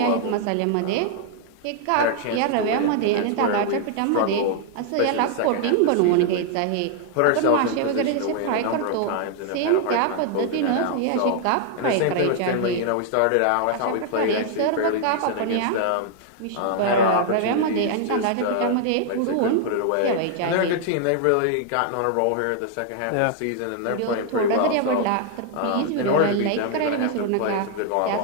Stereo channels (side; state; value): both; different; correlation 0.00